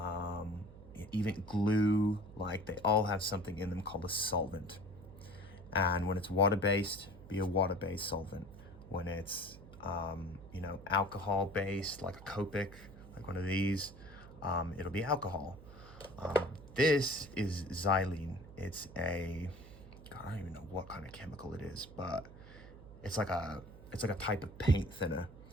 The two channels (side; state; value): right; noise; hum, 17 dB below the sound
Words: even glue, like, they all have something in them called a solvent. And when it's water-based, be a water-based solvent. When it's alcohol-based, like a Copic, like one of these, it'll be alcohol. This is xylene. It's a, God, I don't even know what kind of chemical it is, but it's like a type of paint thinner.